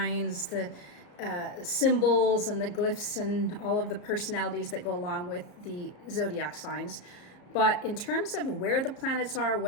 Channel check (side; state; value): right; late; 34 ms